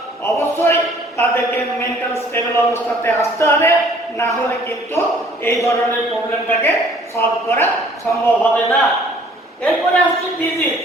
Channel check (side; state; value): both; normal; correlation 0.56